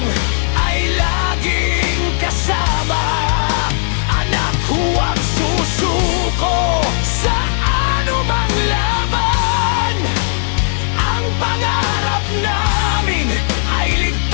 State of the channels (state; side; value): silent; right; digital silence